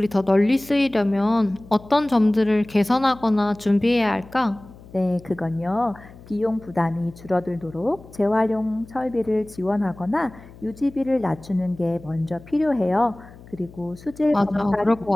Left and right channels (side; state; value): left; noise; hum, 21 dB below the sound